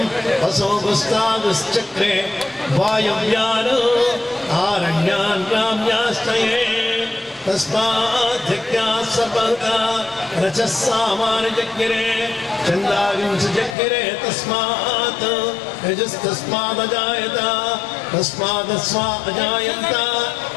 असोगुस्तागुश्चक्रे वायव्यान् आरण्यान् ग्राम्यास्तये तस्माद्यज्ञात् सर्वहुता रचः सामान्यजज्ञिरे चन्दाविंशजज्ञिरे तस्मात् यजस्तस्मादजायत तस्मादस्वा अजायन्त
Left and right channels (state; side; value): drops out; right; at 13.8 s